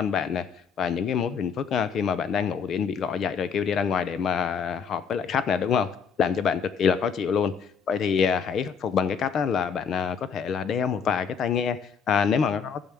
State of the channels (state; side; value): quieter; right; 6.5 dB